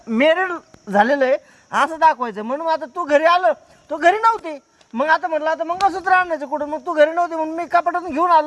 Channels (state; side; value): identical; both; correlation 1.00